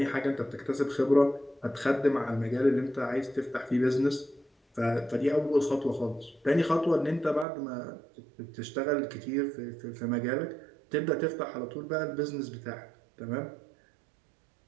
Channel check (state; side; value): drops out; left; at 7.5 s